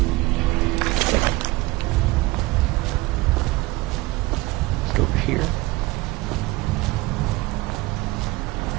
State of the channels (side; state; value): left; quieter; 20.5 dB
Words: Just over here.